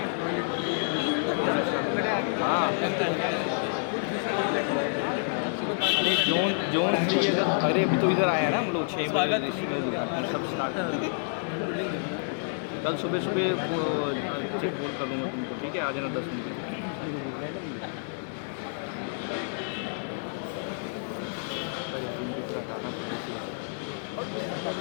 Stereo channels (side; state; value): right; silent; digital silence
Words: अरे अभी तो इधर आया ना हम लोग 6 स्वागत कल सुबह बोल कर लेना तुमको, ठीक है? आ जाना 10 मिनट।